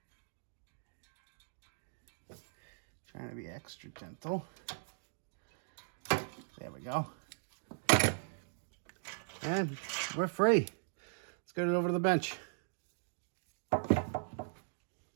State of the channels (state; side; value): silent; left; digital silence